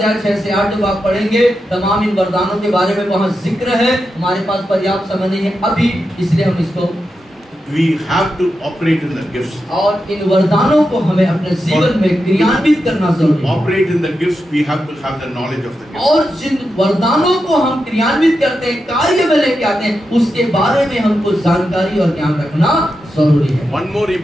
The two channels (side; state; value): both; normal; correlation 0.88